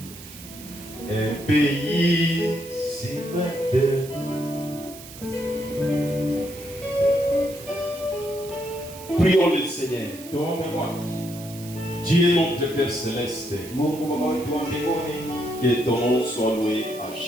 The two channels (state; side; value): noise; right; hiss, 16 dB below the sound